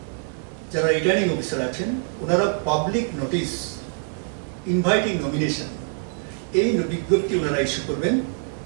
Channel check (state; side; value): silent; left; 58 dB below the other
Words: যারা রিটার্নিং অফিসার আছেন, ওনারা পাবলিক নোটিশ ইনভাইটিং নমিনেশন, এই বিজ্ঞপ্তি ওনারা ইস্যু করবেন